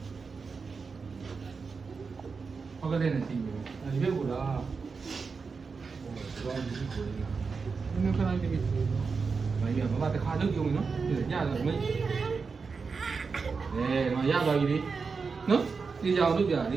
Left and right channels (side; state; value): left; quieter; 5.0 dB